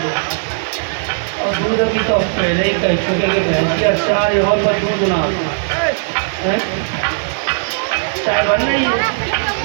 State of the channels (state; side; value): silent; left; digital silence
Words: और दूध अभी तो पहले ही कह चुके कि भैंस के अचार और पर दूध ना है चाय बनना ही